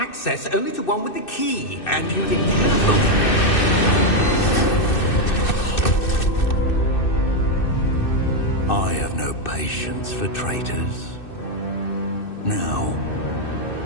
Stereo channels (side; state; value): right; late; 2.6 ms